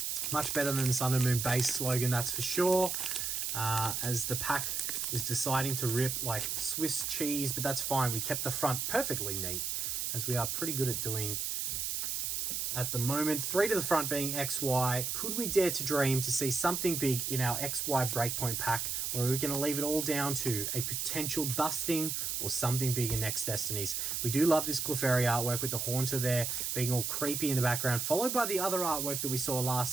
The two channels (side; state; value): right; noise; hiss, 1 dB below the sound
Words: Much better than the Sun and Moon base slogan, that's for sure. As the pack is deciding to rip like Swiss cheese, but that's fine. We kept the front perfectly neat, as we are pretty good at doing at the moment. 3 to the front being XY. Could we dare to dream to see something big in our XY Breakpoint pack, or are we going to leave it all down to a potential dusting or something big in next Destinies? We do love this Clefairy artwork with the Haunter there being all creepy in the background, followed by the other artwork that we saw